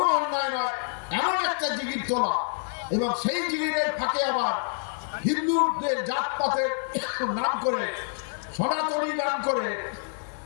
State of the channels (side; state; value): right; silent; digital silence